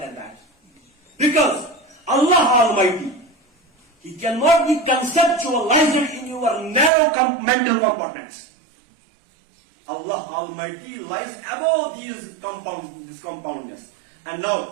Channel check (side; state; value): left; drops out; at 6.9 s